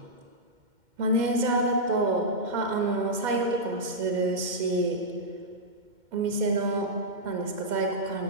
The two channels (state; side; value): late; left; 2.1 ms